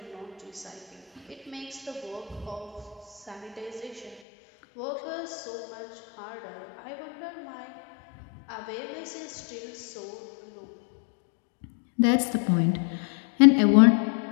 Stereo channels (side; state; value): right; drops out; at 4.2 s